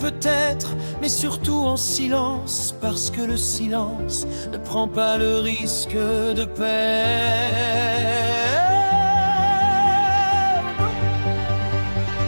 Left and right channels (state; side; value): inverted; both; correlation -1.00